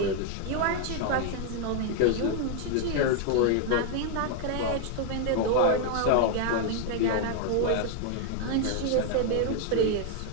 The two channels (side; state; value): both; different; correlation 0.00